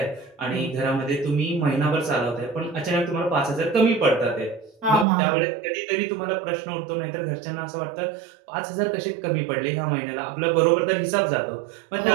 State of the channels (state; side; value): drops out; left; at 5.1 s